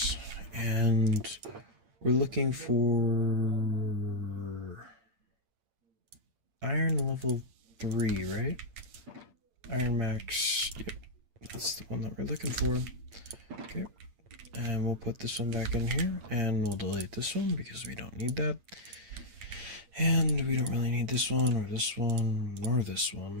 and we're looking for iron level 3, right? Iron max, yep, that's the one that we're looking for. Okay, And we'll put this one back in here, and we'll delete this one because we don't need that. And we don't really need this one, or this one, or this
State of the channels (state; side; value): late; left; 8.8 ms